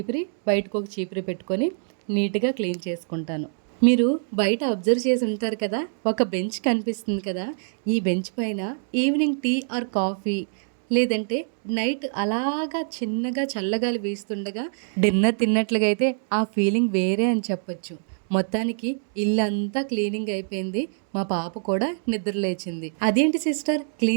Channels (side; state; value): left; silent; digital silence